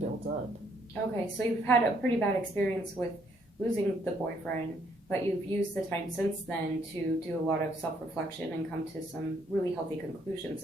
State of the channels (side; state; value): both; normal; correlation 0.69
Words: up. Okay, so you've had a pretty bad experience with losing the boyfriend, but you've used the time since then to do a lot of self reflection and come to some really healthy conclusions